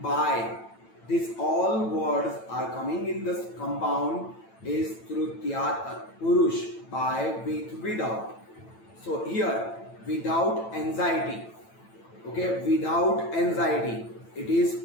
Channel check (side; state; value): right; late; 9.0 ms